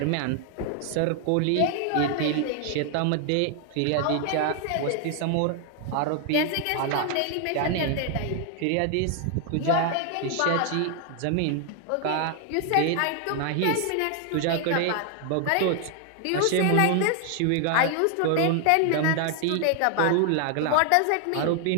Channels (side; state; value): both; different; correlation 0.00